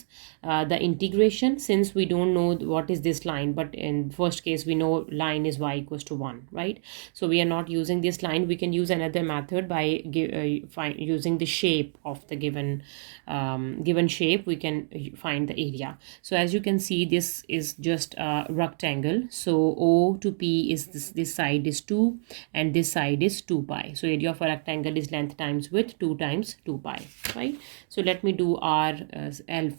the integration since we don't know what is this line, but in first case we know line is y equals to 1, right? So we are not using this line. We can use another method by using the shape of the given shape. We can find the area. So as you can see, this is just a rectangle. So O to P is this side is 2 and this side is 2 pi. So area of a rectangle is length times width 2 times 2 pi, right? So let me do RL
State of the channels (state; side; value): silent; left; digital silence